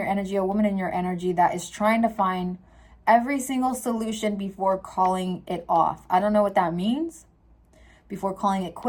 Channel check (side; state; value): both; identical; correlation 1.00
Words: energy, a woman in your energy, that is trying to find every single solution before calling it off. I don't know what that means. Before calling it